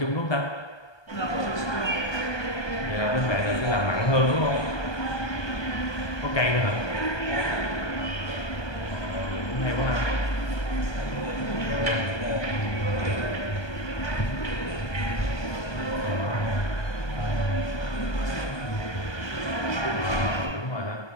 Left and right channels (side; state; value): right; late; 1.2 ms